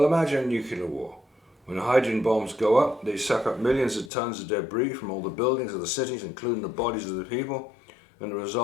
imagine nuclear war. When the hydrogen bombs go up, they suck up millions of tons of debris from all the buildings of the cities, including the bodies of the people, and the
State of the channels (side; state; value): right; drops out; at 4.1 s